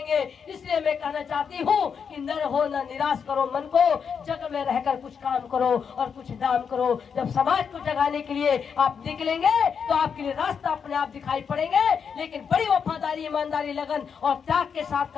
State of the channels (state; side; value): quieter; right; 6.6 dB